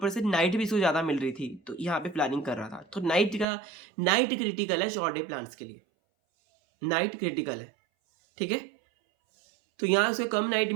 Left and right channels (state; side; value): drops out; left; at 3.5 s